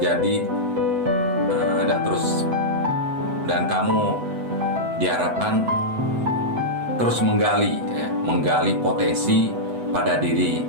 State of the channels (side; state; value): left; late; 8.1 ms